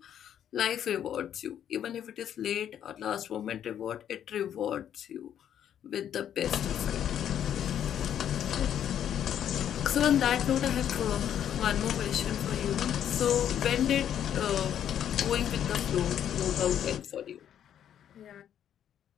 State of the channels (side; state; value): right; quieter; 9.8 dB